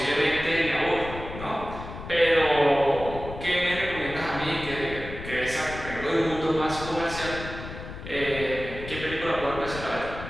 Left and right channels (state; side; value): noise; left; rumble, 11 dB below the sound